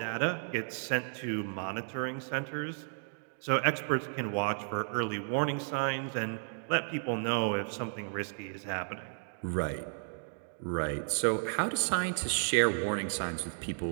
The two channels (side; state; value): left; silent; digital silence